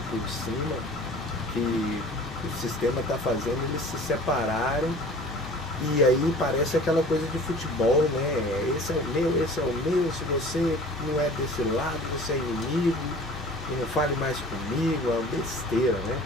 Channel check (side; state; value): both; normal; correlation 0.44